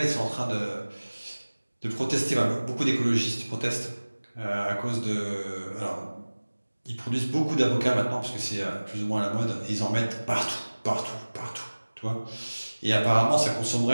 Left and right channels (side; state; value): both; inverted; correlation -1.00